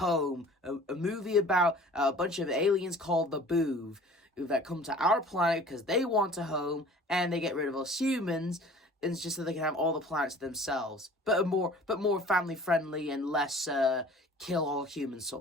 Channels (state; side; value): normal; both; correlation 0.46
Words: a movie about a bunch of aliens called the Boov that come to our planet because they want a home, and they get rid of us humans. And it's just so they can have all the planets themselves, but more family friendly and less kill all humans